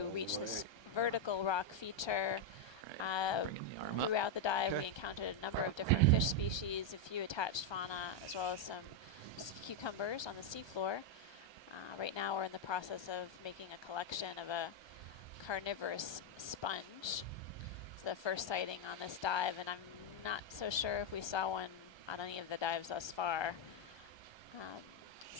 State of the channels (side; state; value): right; late; 1.3 ms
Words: reach this vertical rock feature. Throughout the dive, we encountered a number of different fish species, a few attached fauna, as well as some cucumbers on the seafloor. Right now we're in the process of making a collection of a carnivorous sponge. It's the first sighting on this dive, and I'm not so sure if we saw one on any of the dives thus far.